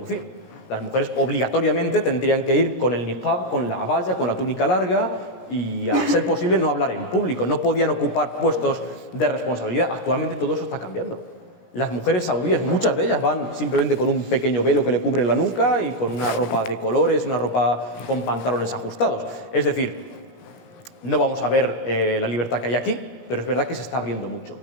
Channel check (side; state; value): right; late; 17 ms